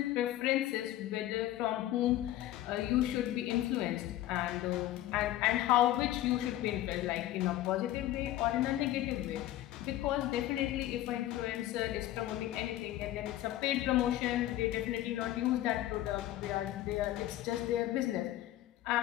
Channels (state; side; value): quieter; right; 14.2 dB